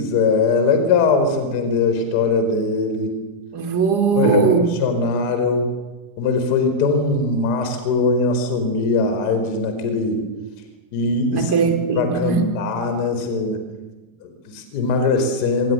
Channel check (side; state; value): right; late; 4.9 ms